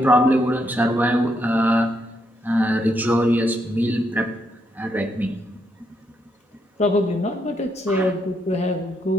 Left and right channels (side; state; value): both; normal; correlation 0.77